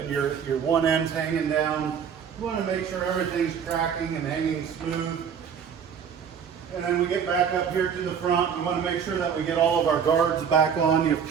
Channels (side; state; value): left; quieter; 7.4 dB